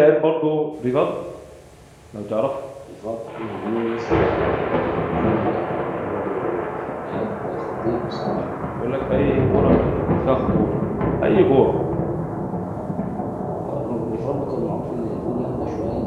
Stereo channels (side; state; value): both; identical; correlation 1.00